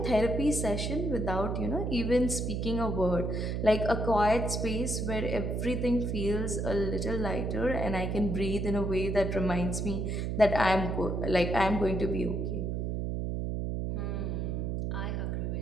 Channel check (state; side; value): noise; right; hum, 1 dB below the sound